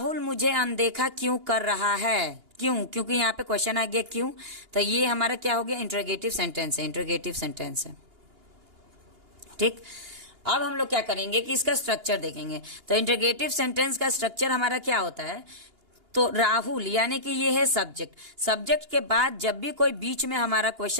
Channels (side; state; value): left; late; 2.8 ms